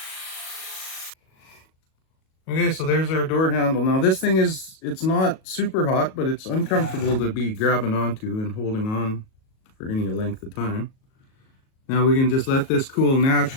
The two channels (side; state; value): right; late; 37 ms